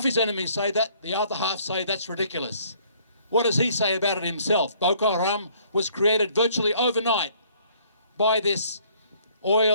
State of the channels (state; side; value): inverted; both; correlation -0.61